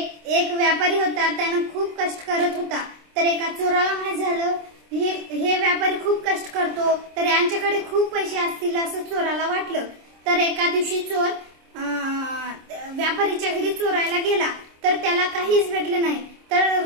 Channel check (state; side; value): late; left; 26 ms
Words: व्यापारी होता, त्याने खूप कष्ट करत होता। तर एका चोराला माहित झालं हे व्यापारी खूप कष्ट करतो, तर यांच्याकडे खूप पैसे असतील असं चोराला वाटलं। तर एका दिवशी चोर व्यापारीच्या घरी चोरायला गेला, तर त्याला काहीच भेटलं नाही। तर